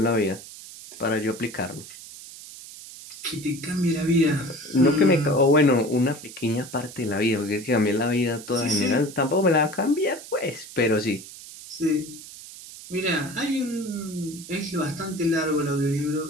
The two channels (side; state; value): right; noise; hiss, 15 dB below the sound